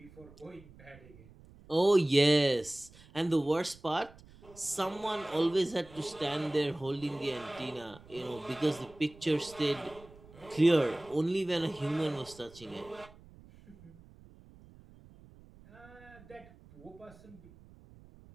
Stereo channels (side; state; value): right; noise; rumble, 22 dB below the sound